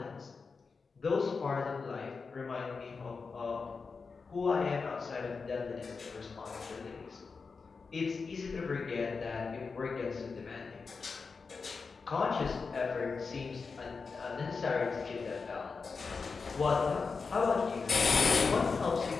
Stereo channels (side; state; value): right; quieter; 4.8 dB